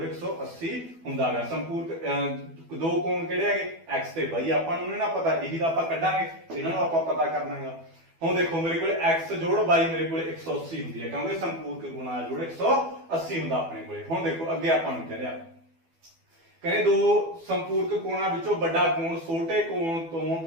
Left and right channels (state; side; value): late; left; 12 ms